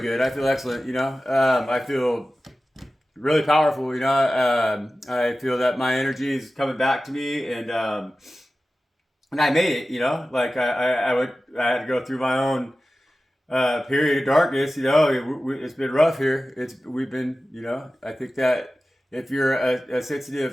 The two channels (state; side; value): normal; both; correlation 0.95